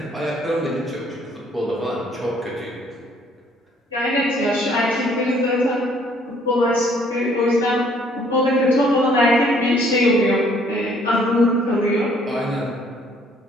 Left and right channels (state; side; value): normal; both; correlation 0.62